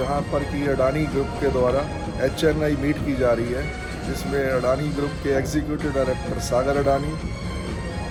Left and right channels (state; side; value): identical; both; correlation 1.00